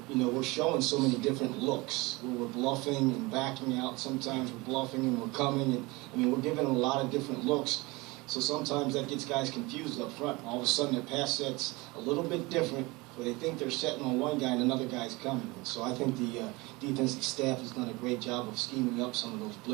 We're showing so many different looks. We're bluffing and backing out. Sometimes we're bluffing and we're coming. And we're giving them a lot of different looks. So sometimes that gets guys confused up front. All of a sudden their pass set's a little bit different, where they think they're setting on one guy and another guy's coming. So I think the defensive staff has done a great job of scheming up some of those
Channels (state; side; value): quieter; left; 23.7 dB